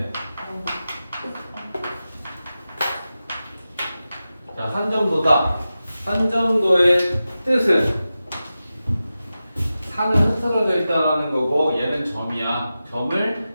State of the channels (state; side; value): inverted; both; correlation -0.93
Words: 자, 산점도다. 산점도의 뜻은 산은 흐트러져 있다라는 거고 얘는 점이야.